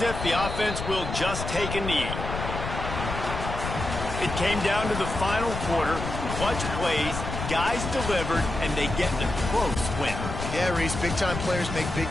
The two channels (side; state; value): left; noise; rumble, 5 dB below the sound